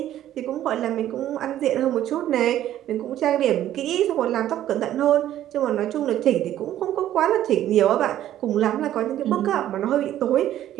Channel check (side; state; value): left; quieter; 12.3 dB